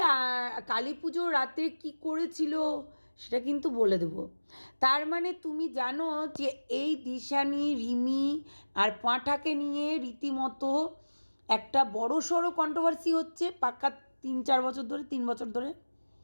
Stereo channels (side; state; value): both; inverted; correlation -1.00